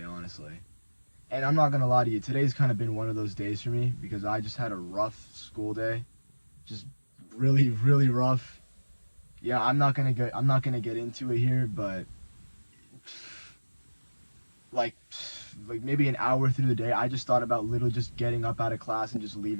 honestly. And I'm not gonna lie to you, today's kind of been one of those days for me because I just had a rough school day. Just really, really rough. Yeah, I'm not gonna get into it here, but like like maybe an hour through the day, I just thought about literally just getting up out of class and just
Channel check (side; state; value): both; inverted; correlation -1.00